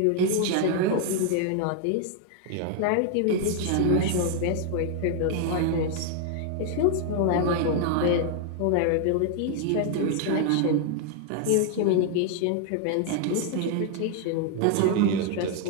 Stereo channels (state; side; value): different; both; correlation 0.00